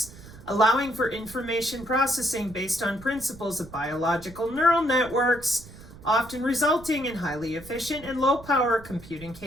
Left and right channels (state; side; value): noise; right; rumble, 18 dB below the sound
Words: allowing for information processing based on principles of biological neural networks, often resulting in highly efficient and low-power computing